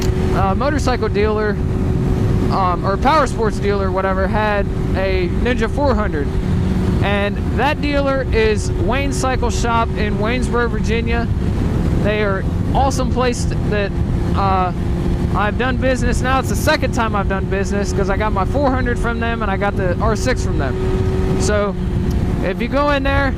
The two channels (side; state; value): both; identical; correlation 1.00